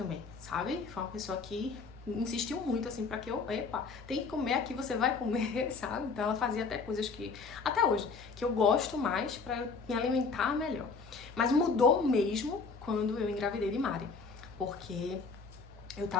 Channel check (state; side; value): quieter; right; 4.7 dB